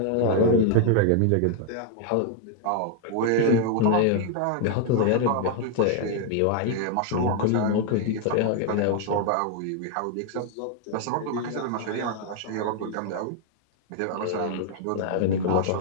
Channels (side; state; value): both; different; correlation 0.00